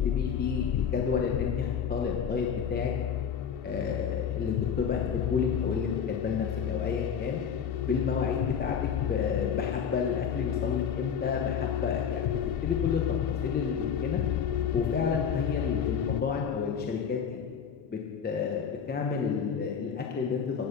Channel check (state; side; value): quieter; right; 7.4 dB